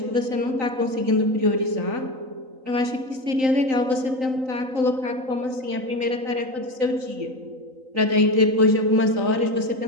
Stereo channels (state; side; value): late; left; 3.9 ms